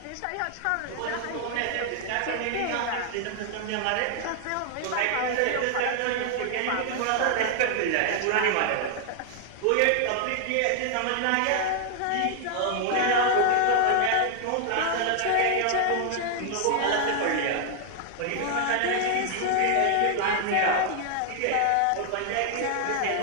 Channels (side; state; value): both; different; correlation 0.00